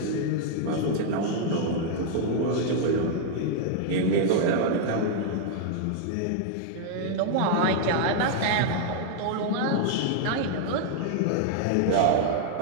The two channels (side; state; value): both; different; correlation -0.01